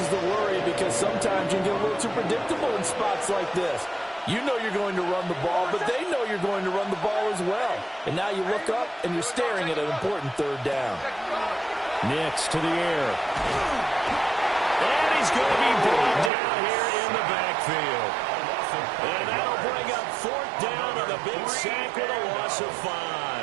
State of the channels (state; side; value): drops out; left; at 16.3 s